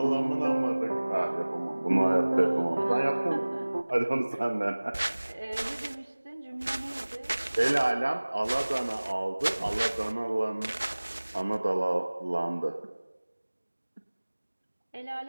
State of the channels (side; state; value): both; inverted; correlation -1.00